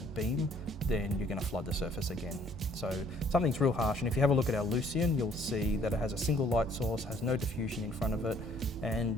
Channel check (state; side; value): normal; both; correlation 0.61